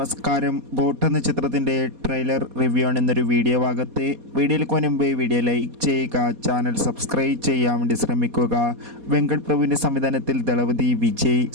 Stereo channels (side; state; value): left; late; 4.2 ms